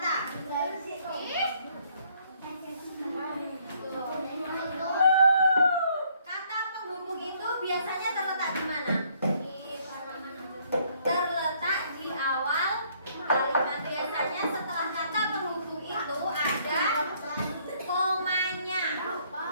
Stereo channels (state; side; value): inverted; both; correlation -0.65